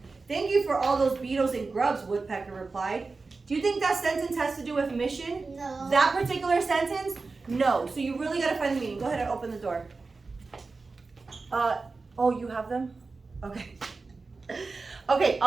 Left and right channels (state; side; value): quieter; left; 4.0 dB